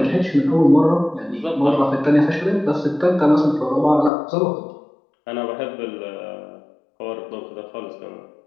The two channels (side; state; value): right; drops out; at 4.1 s